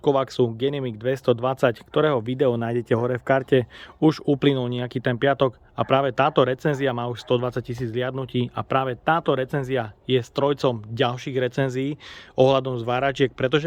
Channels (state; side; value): identical; both; correlation 1.00